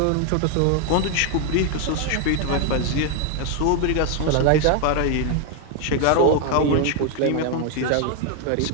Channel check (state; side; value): different; both; correlation 0.01